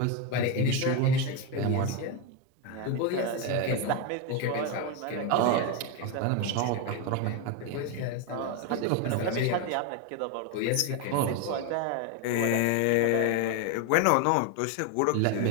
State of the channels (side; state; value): both; different; correlation 0.02